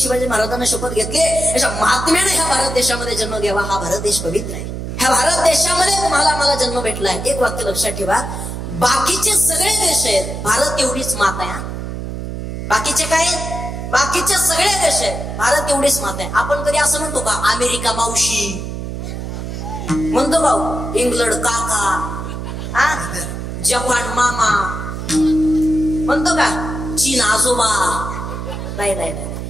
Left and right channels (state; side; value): noise; right; hum, 6 dB below the sound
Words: महाराजांना शपथ घेतली. अशा महात्म्याने ह्या भारत देशामध्ये जन्म घ्यावा. हा भारत देश पवित्र आहे. ह्या भारत देशामध्ये तुम्हाला मला जन्म भेटलाय. एक वाक्य लक्षात ठेवा, बाकीचे सगळे देश आहेत, भारत एवढीच मात आहे. बाकीचे काय, बाकीचे सगळे देश आहेत, भारत एवढीच मात आहे. आपण कधी असं म्हणतो का अमेरिका मावशी म्हणतो भाऊ, इंग्लंड काका, जपान मामा म्हणतो का, चीन आजोबा? नाही नाही नाही,